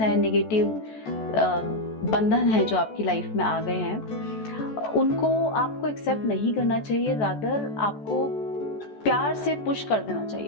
नेगेटिव बंधन है जो आपकी लाइफ में आ गए हैं, उनको आपको एक्सेप्ट नहीं करना चाहिए, रादर आपको प्यार से पुश कर देना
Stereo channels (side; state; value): right; late; 14 ms